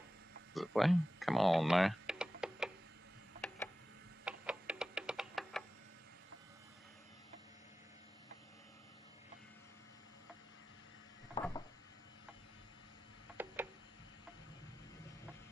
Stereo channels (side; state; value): both; normal; correlation 0.95